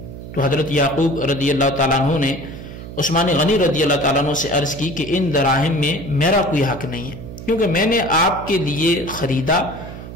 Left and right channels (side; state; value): right; noise; hum, 12 dB below the sound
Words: تو حضرت یعقوب رضی اللہ تعالیٰ عنہ نے عثمان غنی رضی اللہ تعالیٰ عنہ سے عرض کی کہ ان دراہم میں میرا کوئی حق نہیں ہے، کیونکہ میں نے آپ کے لیے خریدا